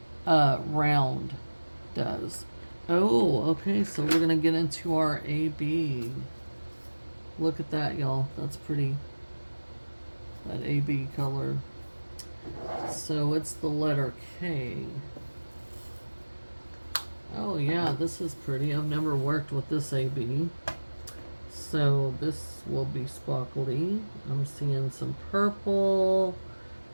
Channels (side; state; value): both; inverted; correlation -1.00